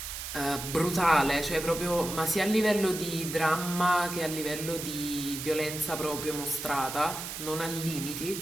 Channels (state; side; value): noise; right; hiss, 7 dB below the sound